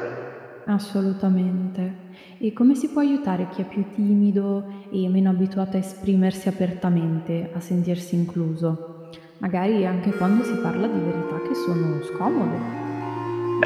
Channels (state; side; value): identical; both; correlation 1.00